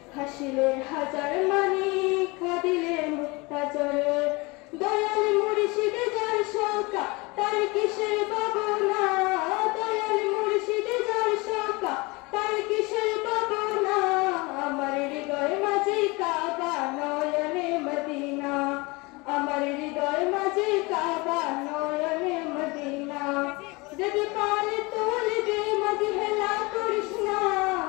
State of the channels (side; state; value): right; quieter; 25.5 dB